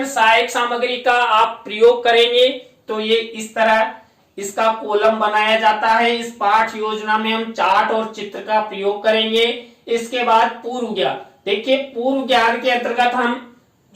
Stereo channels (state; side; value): identical; both; correlation 1.00